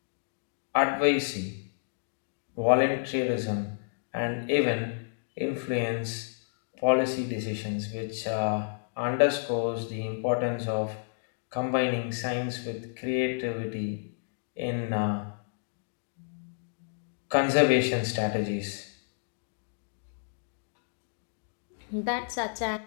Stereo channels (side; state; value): right; silent; digital silence